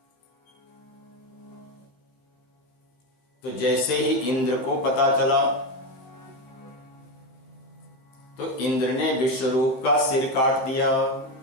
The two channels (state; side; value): late; right; 15 ms